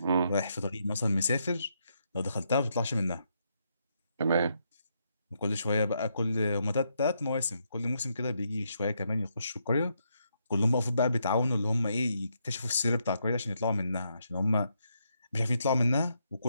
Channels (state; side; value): inverted; both; correlation -0.79